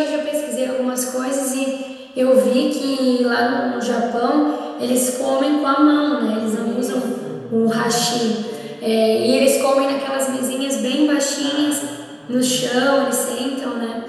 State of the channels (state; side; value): identical; both; correlation 1.00